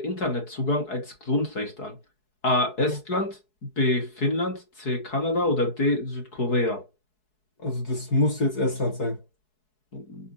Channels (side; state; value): right; late; 4.7 ms